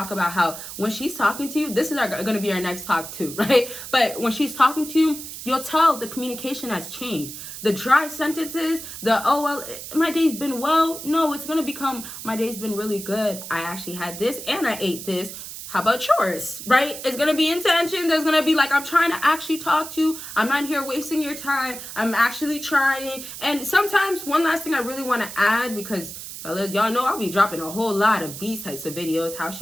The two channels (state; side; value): noise; right; hiss, 10 dB below the sound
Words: about how when she's talking to you, this is going to be our next talk too, right? But when she's talking to you, you'll tell the communication has changed. The dry sentences, oh well, my day's been well. No, it's going to become, my day's been really good. I actually had this and I ate this. How about yours, right? It's going to be intention. There's going to be like, I'm trying to actually talk to you. I'm not here wasting your time. I'm actually trying. And sometimes one last thing I really want to add, because fellas, y'all know I'll be dropping a whole lot of these types of videos, how